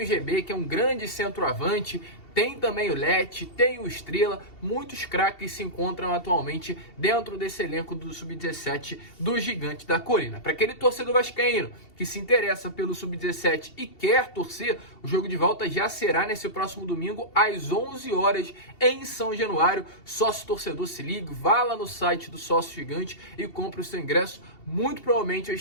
o GB, que é um grande centroavante. Tem também o Lete, tem o Estrela, muitos craques se encontram atualmente dentro desse elenco do Sub-17 do Gigante da Colina. Para aquele torcedor vascaíno que se interessa pelo Sub-17 e quer torcer, o jogo de volta já será nesse próximo domingo às 11 horas em São Januário. Sócio torcedor, se ligue, vá lá no site do Sócio Gigante e compre o seu ingresso. Muito provavelmente eu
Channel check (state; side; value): late; right; 2.7 ms